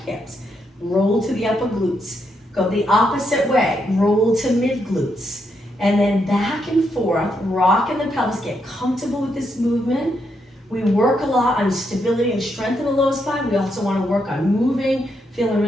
Roll to the upper glutes. Go the opposite way. Roll to mid glutes. And then back and forth, rock in the pelvis. Get comfortable with this movement. We work a lot on stability and strength in the lower spine. We also want to work on moving, feeling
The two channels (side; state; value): both; normal; correlation 0.79